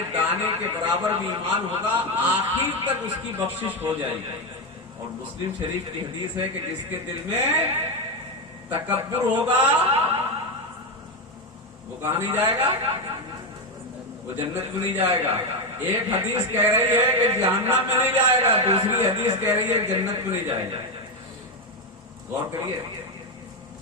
دانے کے برابر بھی ایمان ہوگا، آخر تک اس کی بخشش ہو جائے گی۔ اور مسلم شریف کی حدیث ہے کہ جس کے دل میں تکبر ہوگا وہ کہاں نہیں جائے گا؟ وہ جنت میں نہیں جائے گا۔ ایک حدیث کہہ رہی ہے کہ جہنم میں نہیں جائے گا، دوسری حدیث کہہ رہی ہے کہ جنت میں نہیں جائے گا۔ غور کریے،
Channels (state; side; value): normal; both; correlation 0.09